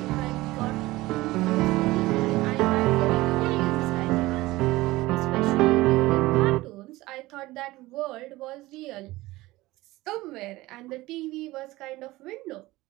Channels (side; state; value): left; quieter; 19.0 dB